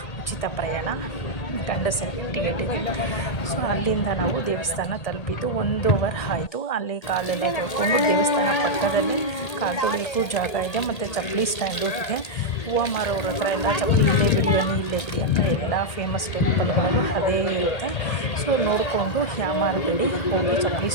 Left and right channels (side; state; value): right; late; 1.8 ms